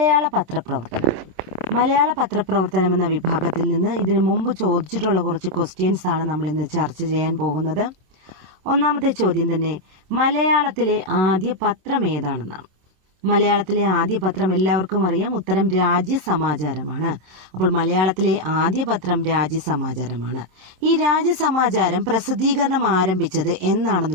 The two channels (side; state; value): left; late; 26 ms